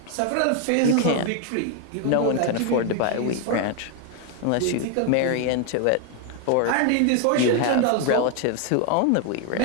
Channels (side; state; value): both; different; correlation 0.01